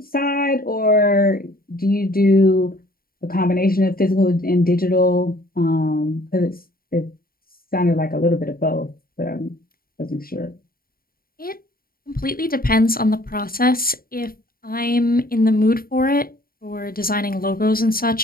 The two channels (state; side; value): late; right; 0.43 ms